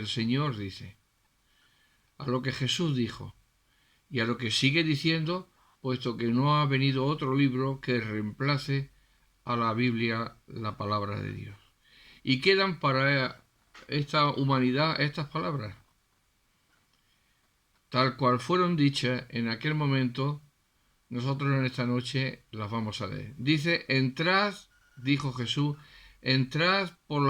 Señor dice, a lo que Jesús dijo y a lo que sigue diciendo, puesto que no ha venido otro libro que reemplace a la Biblia, la palabra de Dios. Y quedan para esta humanidad estas palabras, tal cual fueron dichas en aquel momento. Nosotros en esta noche las vamos a leer. Dice: entrad, dijo Jesús, entrad por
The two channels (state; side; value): identical; both; correlation 1.00